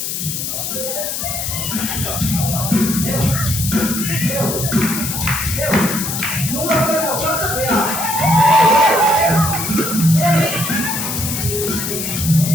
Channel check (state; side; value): noise; left; hiss, 3 dB below the sound